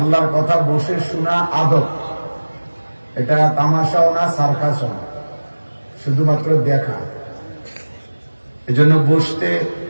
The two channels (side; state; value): both; inverted; correlation -1.00